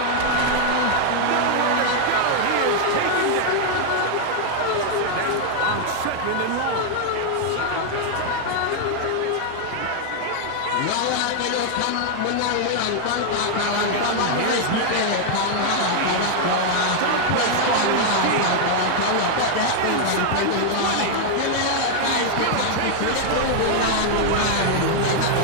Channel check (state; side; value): different; both; correlation 0.00